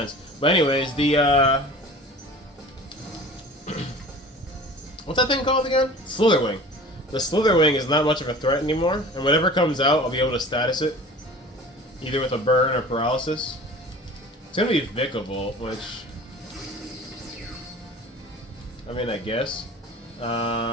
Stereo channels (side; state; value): both; normal; correlation 0.41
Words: But anyways, the What's that thing called again? Slitherwing. The Slitherwing is not much of a threat anymore, and whatever comes out, I'll be able to status it. Either with a burn or paralysis. It's gonna be Vikavolt, which... I mean, I guess.